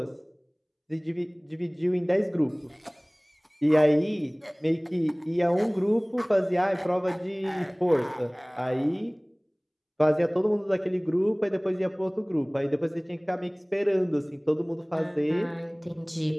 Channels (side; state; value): both; identical; correlation 1.00